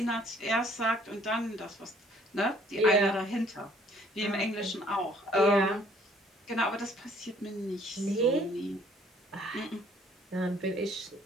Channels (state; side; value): normal; both; correlation 0.60